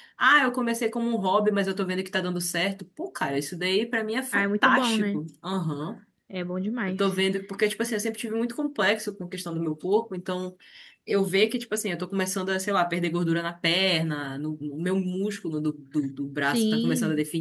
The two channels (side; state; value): both; identical; correlation 1.00